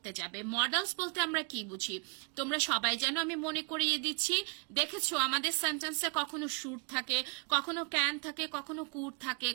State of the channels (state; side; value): quieter; left; 36.4 dB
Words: যাবে মডেলস বলতে আমরা কি বুঝি তোমরা সবাই জানো আমি মনে করিয়ে দিচ্ছি দেখেছো আমাদের সেন্টেন্সে কখনো শুড থাকে কখনো ক্যান থাকে কখনো কুড থাকে